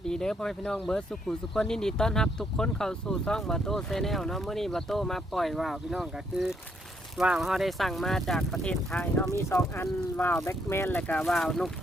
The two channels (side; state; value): both; normal; correlation 0.73